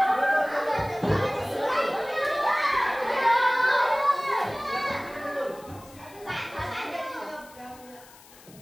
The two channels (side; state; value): left; noise; hiss, 23 dB below the sound